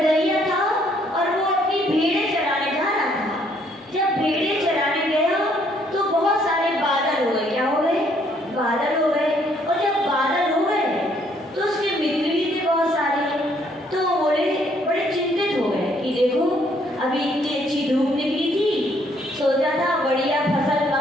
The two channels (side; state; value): both; normal; correlation 0.67